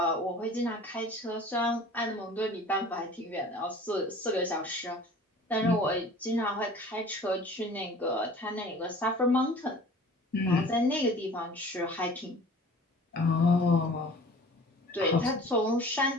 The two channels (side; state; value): both; normal; correlation 0.45